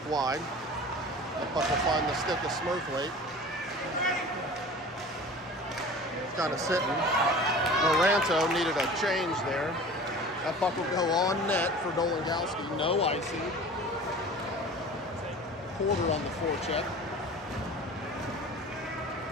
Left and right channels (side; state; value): both; normal; correlation 0.39